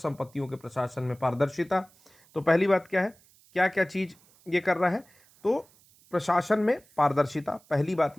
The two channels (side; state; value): right; noise; hiss, 29 dB below the sound